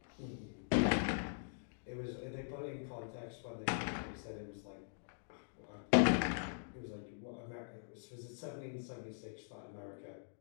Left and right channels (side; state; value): right; silent; digital silence